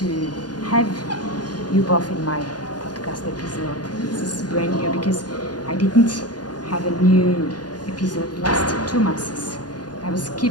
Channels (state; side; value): late; right; 0.69 ms